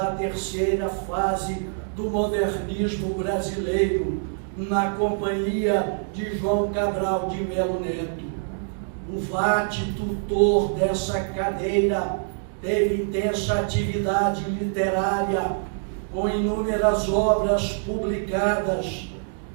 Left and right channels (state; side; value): silent; left; digital silence